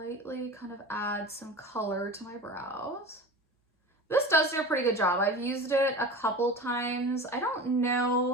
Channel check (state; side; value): normal; both; correlation 0.34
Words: kind of add some color to my brows. This does do a pretty good job. I've used it a couple times. I don't